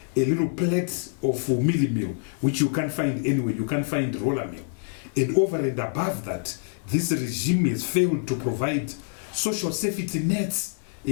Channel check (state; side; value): silent; right; digital silence